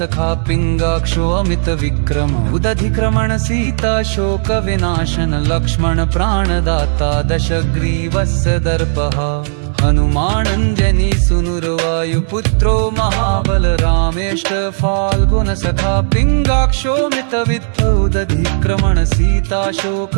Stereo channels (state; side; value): silent; left; digital silence